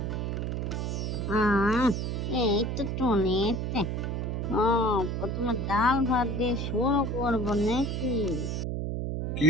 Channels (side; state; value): right; noise; hum, 1 dB below the sound